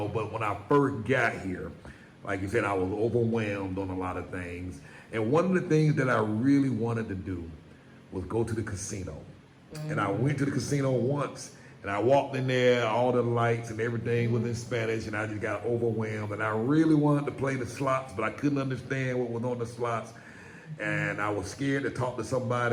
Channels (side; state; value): both; identical; correlation 1.00